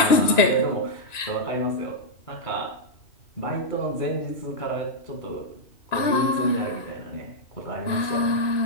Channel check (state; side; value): late; right; 2.9 ms